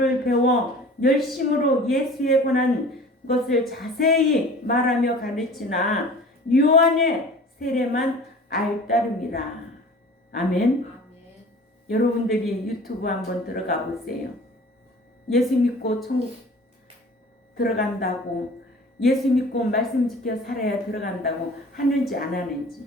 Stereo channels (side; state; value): both; normal; correlation 0.44